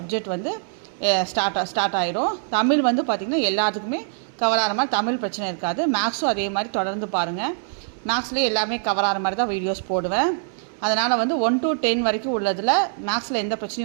வந்து ஸ்டார்ட் ஆகிடும். தமிழ் வந்து பார்த்திங்கன்னா எல்லாத்துக்குமே கவர் ஆகிற மாதிரி தமிழ் பிரச்சனை இருக்காது. மேக்ஸும் அதே மாதிரி தொடர்ந்து பாருங்கள். மேக்ஸ்லேயே எல்லாமே கவர் ஆகிற மாதிரி தான் வீடியோஸ் போடுவேன். அதனால் வந்து 1 to 10 வரைக்கும் உள்ளதில் மேக்ஸில் எந்த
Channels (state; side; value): silent; left; digital silence